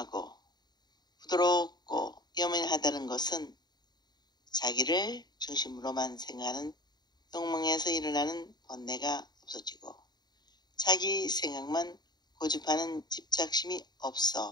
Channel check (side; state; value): right; late; 0.20 ms